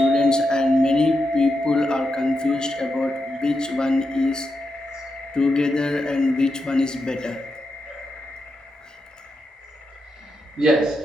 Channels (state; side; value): normal; both; correlation 0.86